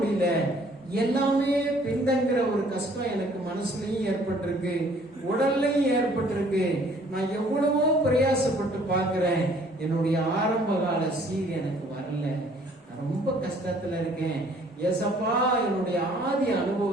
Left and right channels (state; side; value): normal; both; correlation 0.58